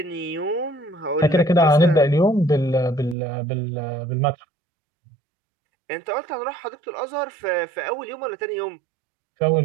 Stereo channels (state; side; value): drops out; left; at 3.2 s